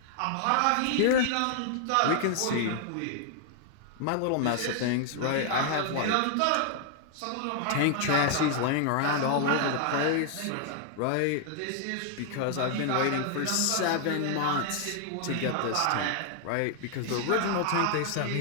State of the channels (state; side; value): different; both; correlation 0.00